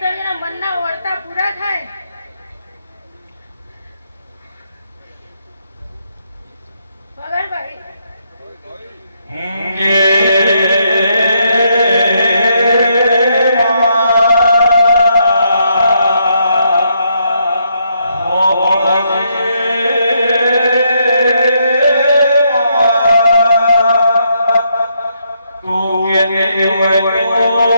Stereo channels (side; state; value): both; inverted; correlation -0.76